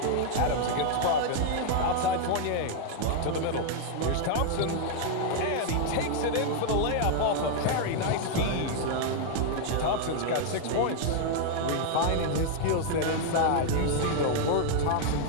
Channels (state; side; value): different; both; correlation 0.00